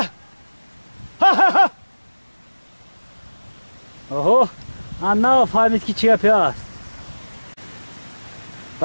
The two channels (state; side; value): inverted; both; correlation -1.00